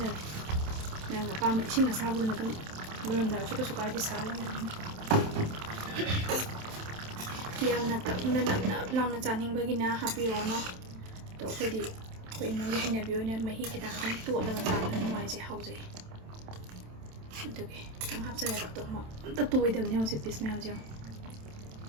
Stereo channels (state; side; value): late; left; 27 ms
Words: ꯅꯪ ꯑꯄꯥꯝꯕ ꯏꯁꯤꯡ ꯑꯁꯥꯕꯗꯨꯅ ꯑꯗꯨꯝ ꯂꯣꯏꯔꯝꯗꯥꯏꯁꯨ ꯀꯩꯁꯨ ꯀꯥꯏꯗꯦ ꯁꯥꯍꯜꯂꯝꯃꯦ ꯌꯥꯝꯅ ꯀꯪꯅ ꯅꯞ ꯅꯞ ꯂꯥꯎꯅ ꯆꯥꯅꯤꯡꯕꯒꯤꯅ ꯍꯥꯞꯄꯤꯔꯛꯑꯣꯅꯣ ꯑꯗꯣ ꯑꯩꯈꯣꯏꯗꯤ ꯑꯩꯈꯣꯏ ꯏꯃꯨꯡꯒꯤ ꯍꯩꯅꯕꯤ ꯑꯣꯏꯅ ꯃꯍꯤ ꯈꯤꯇꯪ ꯈꯤꯇꯪ ꯇꯣꯠꯂꯒ ꯆꯥꯕꯅ ꯅꯨꯡꯉꯥꯏꯖꯩ ꯍꯥꯎꯖꯩ ꯑꯗꯨꯒꯤ ꯈꯤꯇꯪ ꯍꯥꯞꯆꯔꯦꯕ ꯑꯗꯣ ꯑꯝꯇ ꯇꯣꯏꯗꯕꯅꯦ ꯍꯧꯖꯤꯛ ꯄꯤꯁ ꯃꯌꯥꯝꯁꯦ ꯌꯦꯡꯉꯣ